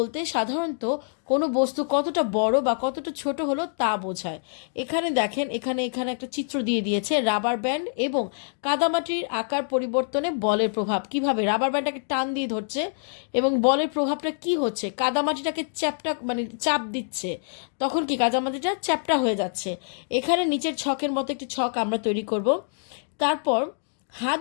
সাধারণত কোনো বস্তু কতটা বড় বা কতটা ছোট হলো তা বোঝায়। এখানে দেখেন এখানে একটা চিত্র দিয়ে দিয়েছে রাবার ব্যান্ড এবং কাদামাটির আকার পরিবর্তনে বলের প্রভাব কিভাবে। রাবার ব্যান্ডটাকে টান দিয়ে ধরছে এবং বলের প্রভাবটা কি হচ্ছে, কাদামাটিটাকে চাপ দিচ্ছে, তখন কি কাদামাটিটা চ্যাপ্টা হয়ে যাচ্ছে। এখানে নিচের ছকের মতো একটি ছক আমরা তৈরি করব। তারপর হাত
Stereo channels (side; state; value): right; silent; digital silence